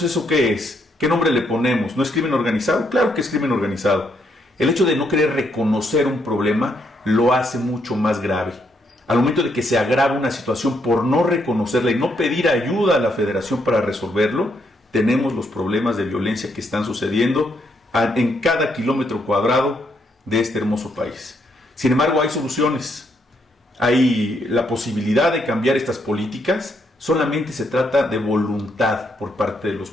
¿eso qué es? ¿Qué nombre le ponemos? ¿No es crimen organizado? Claro que es crimen organizado. El hecho de no querer reconocer un problema lo hace mucho más grave. Al momento de que se agrava una situación por no reconocerla y no pedir ayuda a la Federación para resolverlo, tenemos los problemas de violencia que están sucediendo en cada kilómetro cuadrado de este hermoso país. Sin embargo, hay soluciones. Hay la posibilidad de cambiar estas políticas. Solamente se trata de voluntad por parte de los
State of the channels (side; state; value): both; normal; correlation 0.75